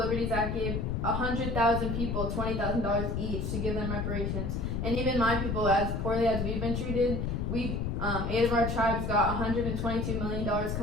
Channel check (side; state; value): left; noise; rumble, 1 dB below the sound